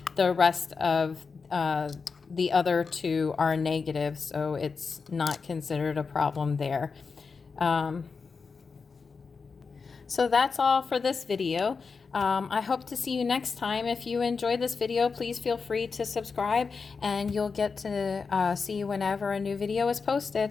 The rest of the other two are negative, so it's not considered a problem there. So that's all for this video. I hope to see you next time. If you enjoyed this video, please feel free to subscribe, and you'll get to see whenever a new video is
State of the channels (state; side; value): quieter; right; 5.0 dB